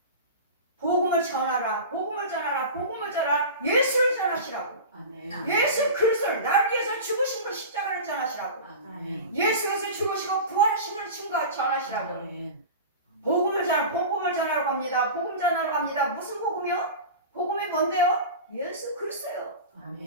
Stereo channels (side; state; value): both; inverted; correlation -0.30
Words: 복음을 전하라. 예수를 전하시라고. 예수 그리스도를 나를 위해서 죽으신 걸 십자가를 전하시라고. 예수께서 죽으시고 부활하신 걸 전하시라고. 복음을 전하러 갑니다. 복음 전하러 갑니다. 무슨 복음이요? 복음이 뭔데요? 예수 그리스도요.